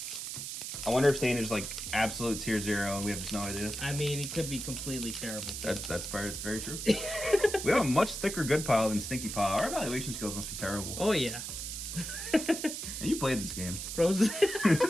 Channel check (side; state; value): right; noise; hiss, 6 dB below the sound